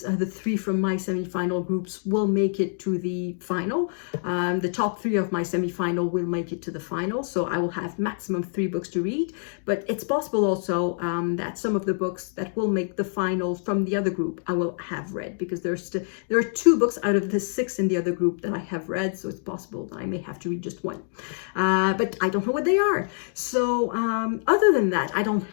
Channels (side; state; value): right; silent; digital silence